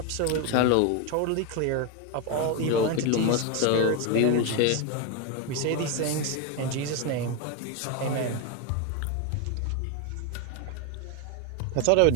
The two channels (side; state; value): both; different; correlation 0.02